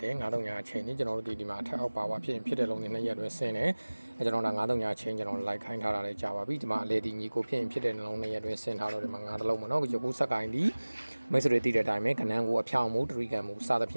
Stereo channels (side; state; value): both; inverted; correlation -1.00